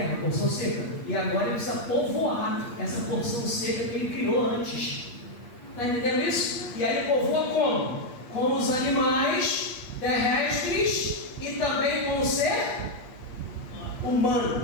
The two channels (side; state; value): right; late; 8.5 ms